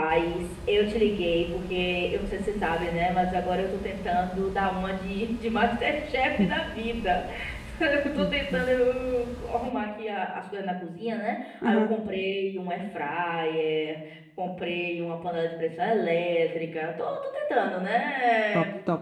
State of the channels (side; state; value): both; identical; correlation 1.00